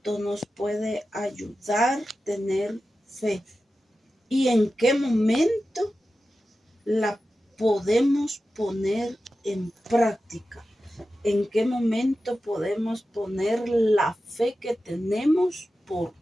nos puede ayudar tener fe? ¿Y en qué momento la podemos poner en práctica? ¿En qué momento podemos poner la fe que tenemos por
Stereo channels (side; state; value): both; normal; correlation 0.93